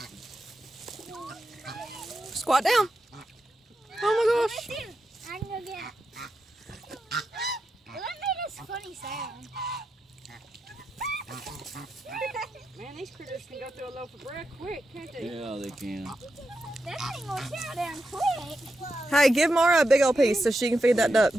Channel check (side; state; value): both; normal; correlation 0.87